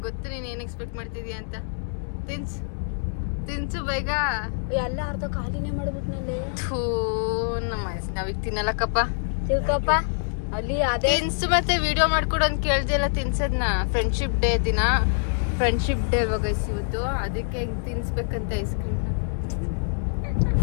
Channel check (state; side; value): silent; right; digital silence